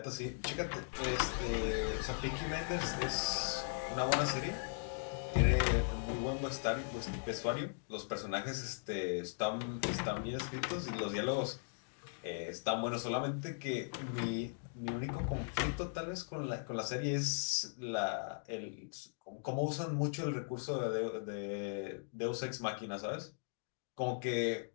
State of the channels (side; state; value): right; silent; digital silence